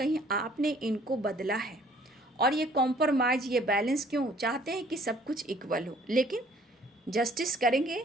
आपने इनको बदला है, और ये कॉम्प्रोमाइज, ये बैलेंस क्यों चाहते हैं कि सब कुछ इक्वल हो, लेकिन जस्टिस करेंगे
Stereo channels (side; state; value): both; normal; correlation 0.58